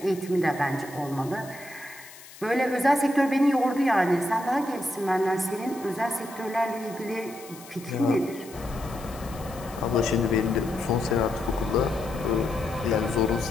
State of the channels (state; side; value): noise; left; hiss, 19 dB below the sound